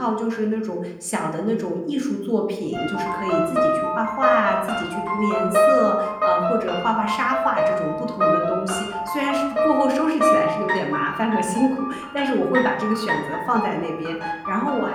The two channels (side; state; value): both; identical; correlation 1.00